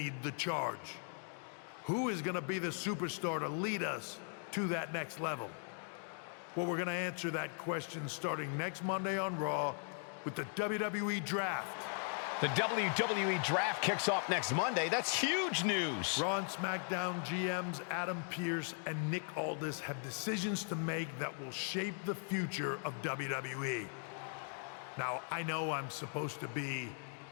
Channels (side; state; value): right; silent; 52 dB below the other